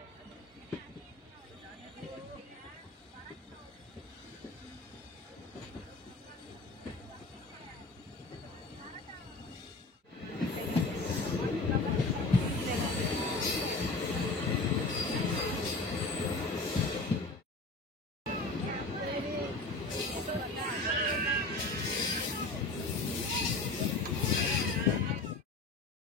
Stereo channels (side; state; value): right; quieter; 3.2 dB